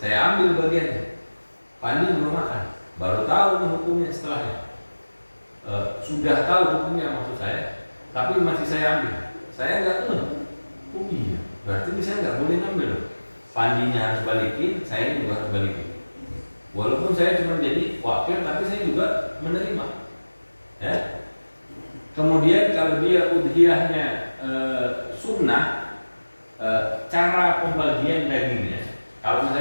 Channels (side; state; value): both; inverted; correlation -1.00